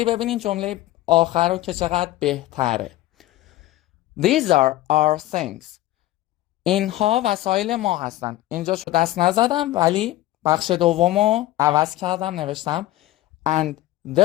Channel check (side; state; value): right; quieter; 15.8 dB